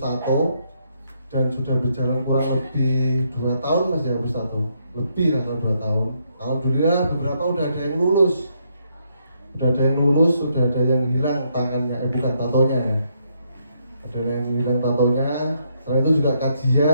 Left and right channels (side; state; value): both; inverted; correlation -0.75